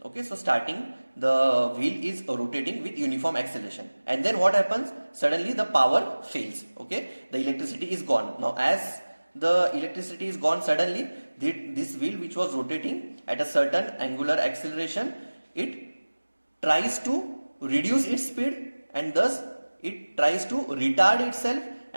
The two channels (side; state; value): both; inverted; correlation -1.00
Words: Okay, so starting the wheel is rotating with uniform acceleration, and then what happens? Suddenly the power fails. Okay, the electricity is gone. Now as the electricity is gone suddenly, this wheel which was rotating at a certain angular acceleration, it tries to reduce its speed, and thus it tries to retard itself,